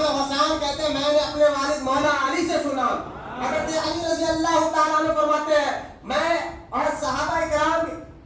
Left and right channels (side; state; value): both; identical; correlation 1.00